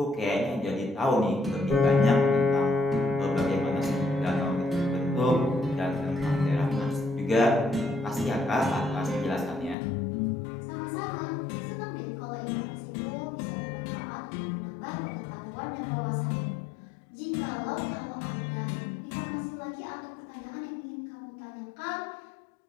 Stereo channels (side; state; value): right; drops out; at 9.8 s